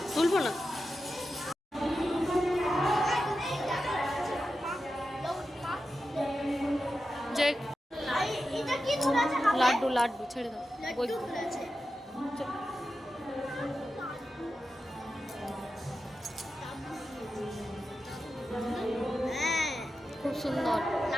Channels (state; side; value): normal; both; correlation 0.90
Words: তুলবো না, যে লাড্ডু লাড্ডু ছেড়ে দাও। খুব সুন্দর